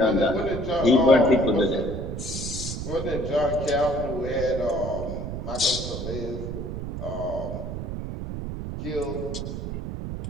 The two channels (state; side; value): noise; right; rumble, 6 dB below the sound